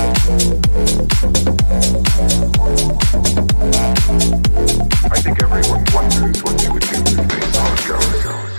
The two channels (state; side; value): inverted; both; correlation -1.00